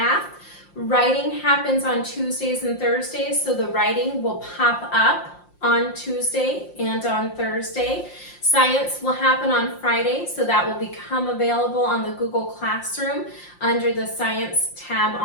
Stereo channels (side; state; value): right; late; 5.7 ms